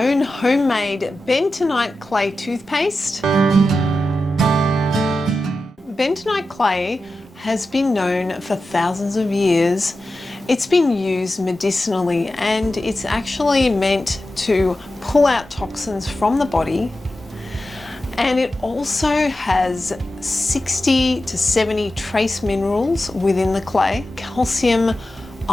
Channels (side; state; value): both; normal; correlation 0.92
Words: homemade bentonite clay toothpaste. Bentonite clay has been known for thousands of years. It's been used medicinally and it's actually meant to pull out toxins from the body. And it also has 60 to 70 trace minerals within the clay: calcium,